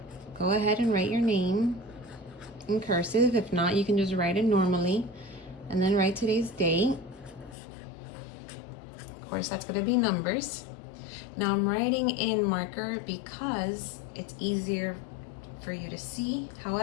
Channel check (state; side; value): drops out; right; at 7.6 s